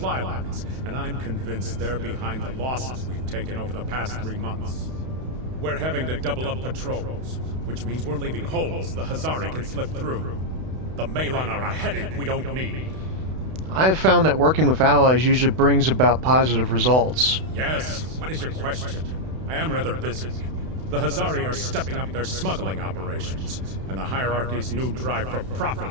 lines, and I'm convinced they're behind the losses we've taken over the past 3 months. We're having to double up patrols, which means we're leaving holes the Hazari can slip through. The Malon are a headache we don't need. I have found that working with allies usually brings about positive results. Yes, what is your question? I am rather busy. The Hazari are stepping up their smuggling operations, and the hierarchy's new drive for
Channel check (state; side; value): late; left; 32 ms